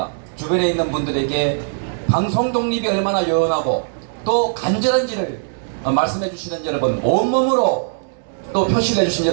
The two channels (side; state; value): left; silent; 66 dB below the other